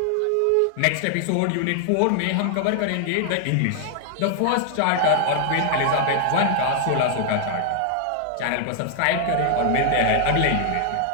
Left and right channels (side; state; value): both; different; correlation 0.00